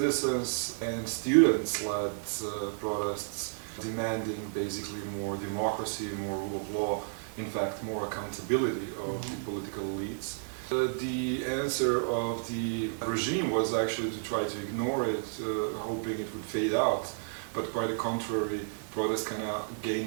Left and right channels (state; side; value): silent; left; digital silence